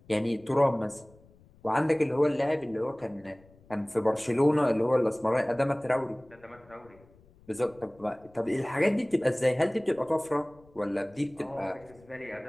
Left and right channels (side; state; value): left; noise; rumble, 27 dB below the sound